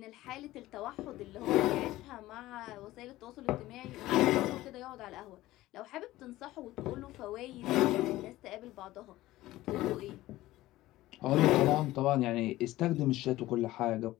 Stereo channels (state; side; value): quieter; right; 16.6 dB